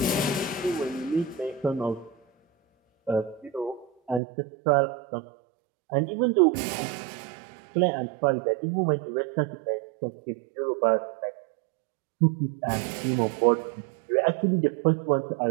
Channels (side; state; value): left; drops out; at 4.2 s